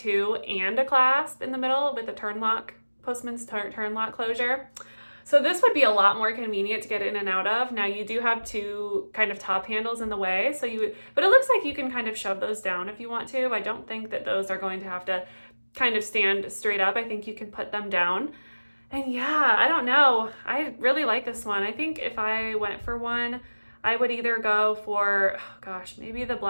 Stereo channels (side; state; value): both; inverted; correlation -1.00